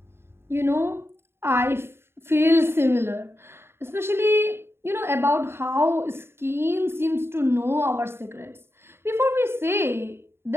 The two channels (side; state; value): left; late; 0.12 ms